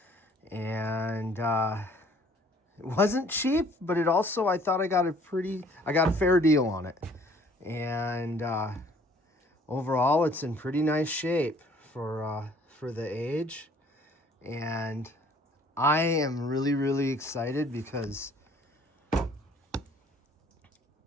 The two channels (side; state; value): both; normal; correlation 0.57